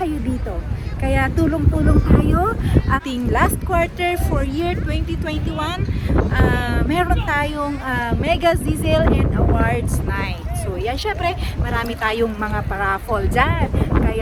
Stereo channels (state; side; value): identical; both; correlation 1.00